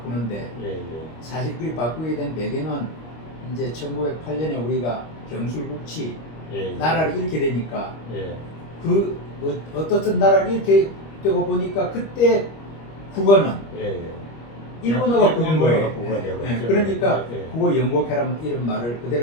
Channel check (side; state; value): right; late; 25 ms